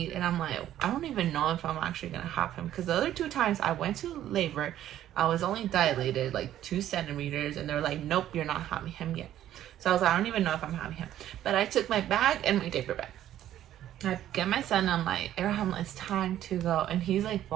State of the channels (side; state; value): left; quieter; 12.1 dB